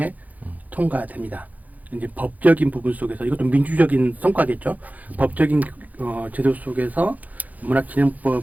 통과됩니다. 이제 법적인 부분 속에서 이것도 민주적인 성과겠죠. 법적인 제도 속에서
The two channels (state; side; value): late; left; 0.079 ms